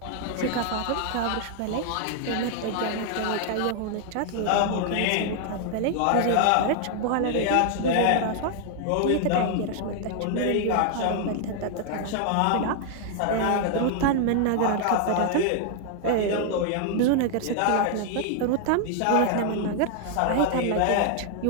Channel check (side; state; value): both; different; correlation 0.00